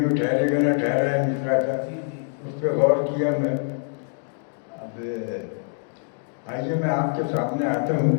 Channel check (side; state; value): right; silent; digital silence